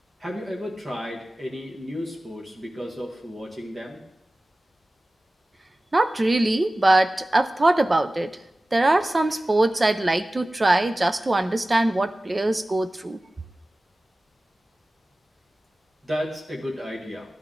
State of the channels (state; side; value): normal; both; correlation 0.97